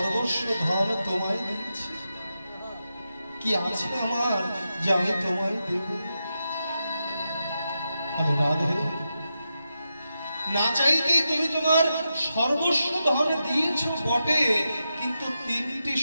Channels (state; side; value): inverted; both; correlation -0.88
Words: ধন তোমায় দিচ্ছি। কি আছে আমার যে আমি তোমায় দেব? আমি রাধে, না চাইতেই তুমি তোমার সর্বস্ব ধন দিয়েছ বটে, কিন্তু তিনটি